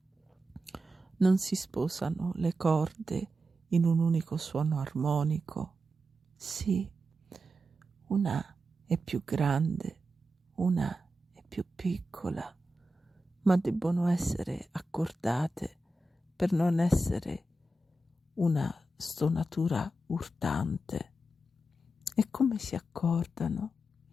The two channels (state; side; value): normal; both; correlation 0.89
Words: Non si sposano le corde in un unico suono armonico. Sì, una è più grande, una è più piccola, ma debbono essere accordate per non essere una stonatura urtante. E come si accordano?